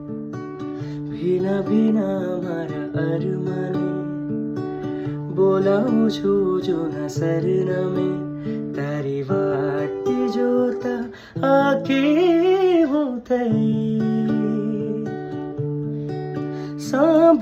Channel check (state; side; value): identical; both; correlation 1.00